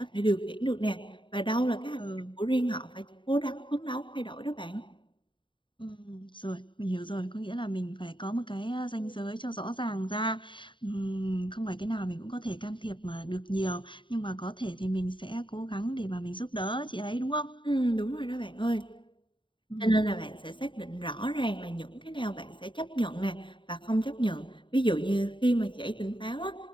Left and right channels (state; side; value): late; right; 0.23 ms